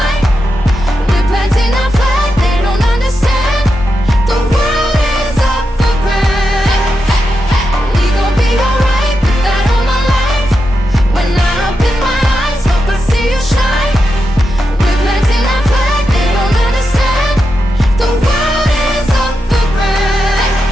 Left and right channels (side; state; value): both; normal; correlation 0.87